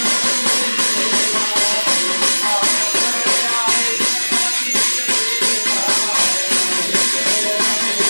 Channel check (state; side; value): inverted; both; correlation -1.00